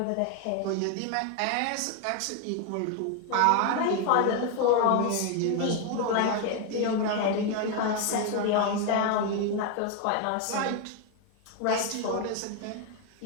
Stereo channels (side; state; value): both; different; correlation 0.01